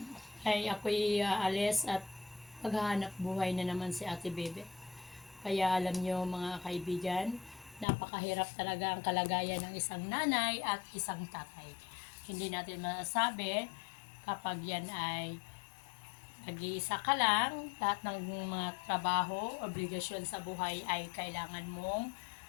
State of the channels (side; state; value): right; drops out; at 7.9 s